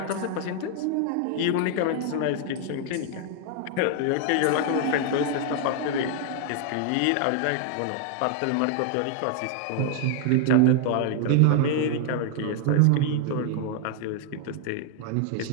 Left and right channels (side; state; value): both; different; correlation 0.00